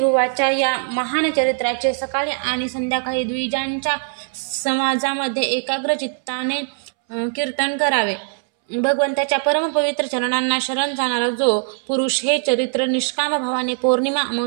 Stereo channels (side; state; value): left; silent; 65 dB below the other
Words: या महान चरित्राचे सकाळी आणि संध्याकाळी द्विजांच्या समाजामध्ये एकाग्र चित्ताने कीर्तन करावे. भगवंताच्या परमपवित्र चरणांना शरण जाणारा जो पुरुष हे चरित्र निष्काम भावाने पौर्णिमा,